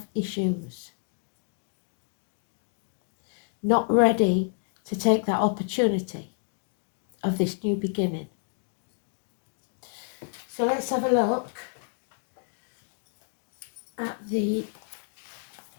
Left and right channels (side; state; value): right; silent; 58 dB below the other